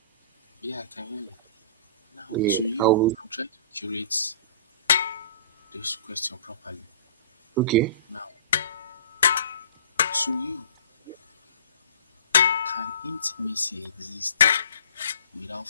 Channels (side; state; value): both; inverted; correlation -0.46